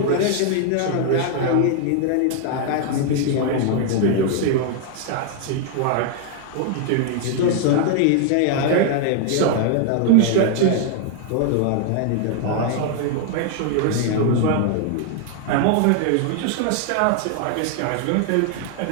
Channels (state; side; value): different; both; correlation 0.00